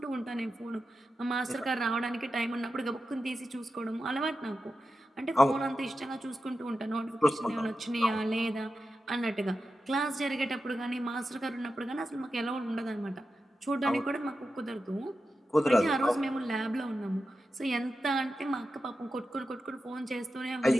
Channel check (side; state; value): both; normal; correlation 0.91